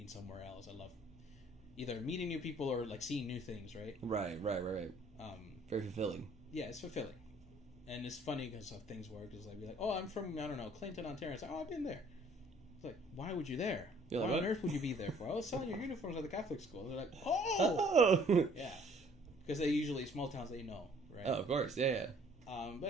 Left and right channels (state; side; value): normal; both; correlation 0.58